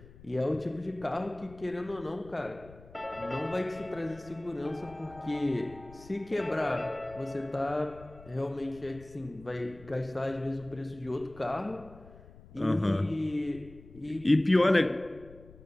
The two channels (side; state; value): left; noise; rumble, 20 dB below the sound